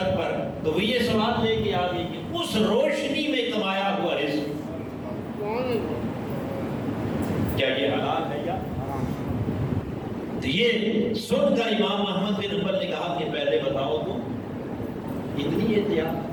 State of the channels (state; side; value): identical; both; correlation 1.00